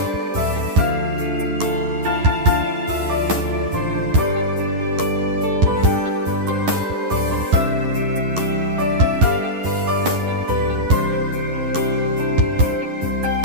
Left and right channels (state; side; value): late; left; 11 ms